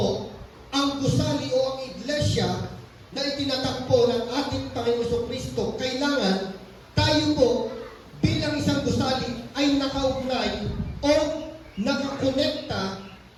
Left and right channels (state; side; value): identical; both; correlation 1.00